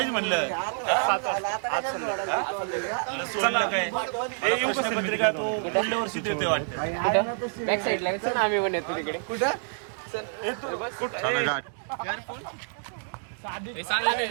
म्हणलं? चला हे येऊ कसं मित्र तू पुढल्या वर्षी देते वाटतं. बॅक साईडला आम्ही पण येतो तिकडे. चला गाठ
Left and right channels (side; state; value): left; silent; digital silence